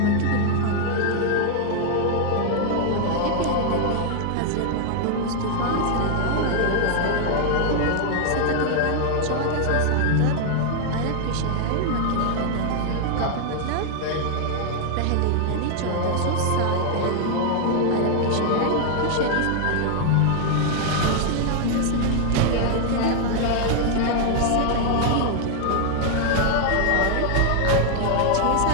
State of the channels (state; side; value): different; both; correlation 0.00